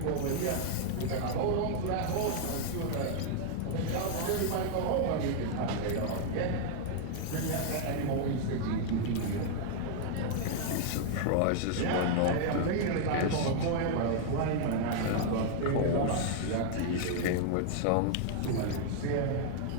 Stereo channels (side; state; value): both; different; correlation 0.00